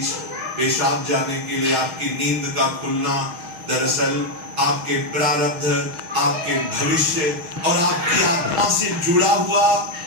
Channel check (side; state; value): left; late; 6.4 ms